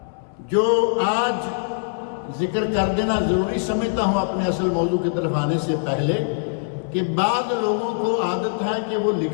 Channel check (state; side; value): silent; right; 63 dB below the other